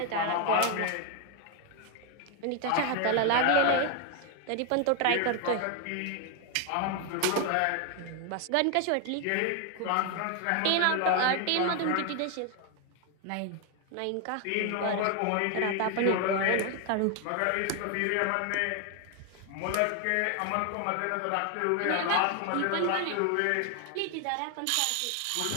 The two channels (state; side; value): different; both; correlation 0.01